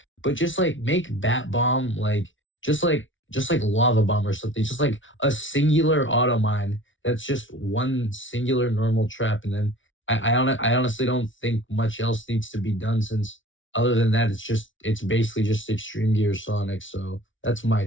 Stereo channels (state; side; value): late; right; 0.56 ms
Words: but just like make bat bomb like just like lava bomb or something. Just like a singular auto mine that's just one singular normal trap, and then I honestly don't think much else needs to be done since other than that it's basically just extreme gear Sonic. So that's my